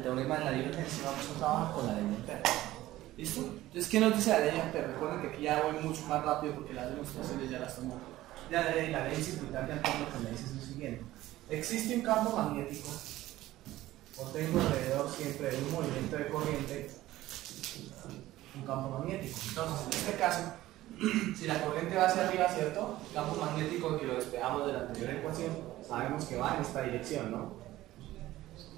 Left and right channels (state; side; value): quieter; left; 15.8 dB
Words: teorema de la divergencia, vamos a trabajar con la ley de Ampère. ¿Listo? Entonces, ¿qué nos dice la ley de Ampère? Recuerden que aquí ya voy mucho más rápido porque las demostraciones ya las tomo. Ya la ley circuital de Ampère lo que me dice es lo siguiente. Existe un campo magnético, o tengo alrededor siempre de un movimiento de corriente, un campo magnético. Entonces, en este caso, si la corriente va hacia arriba, ¿cierto? El campo magnético que lo despejamos de la anterior ecuación, sabemos que va en esta dirección, ¿no?